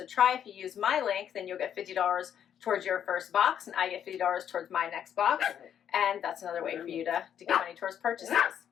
try. If you use my link, then you'll get $50 towards your first box, and I get $50 towards my next box. And that's another way for you to get money towards purchases.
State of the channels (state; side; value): quieter; right; 9.2 dB